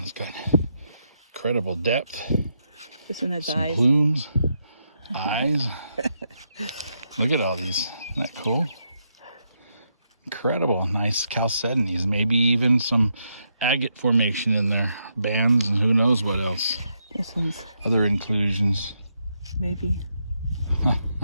got incredible depth. This one has some eyes. Plumes, eyes. Look at all these. Isn't that cool? Incredible. Nice chalcedonies. Maybe even some agate formation in there. Bands and who knows what else. This one's other inclusions. maybe.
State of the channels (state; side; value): inverted; both; correlation -0.81